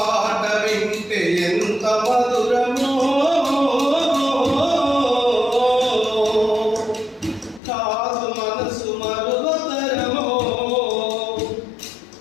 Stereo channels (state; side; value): drops out; right; at 7.6 s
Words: వింటే ఎంత మధురమో, కాదు మనసు మరువతరమో.